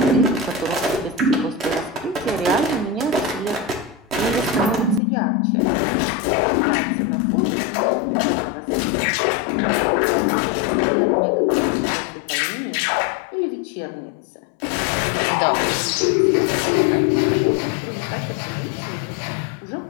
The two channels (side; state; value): right; drops out; at 5.0 s